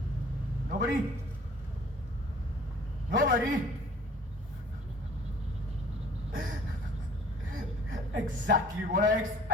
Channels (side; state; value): both; normal; correlation 0.52